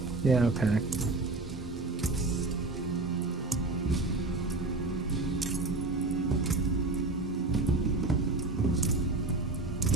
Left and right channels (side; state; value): left; quieter; 3.2 dB